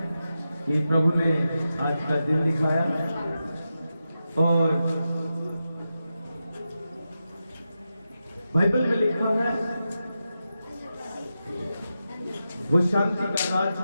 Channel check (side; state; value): both; inverted; correlation -0.89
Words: कि प्रभु ने आज का दिन दिखाया और बाइबल में लिखा है वो शांति का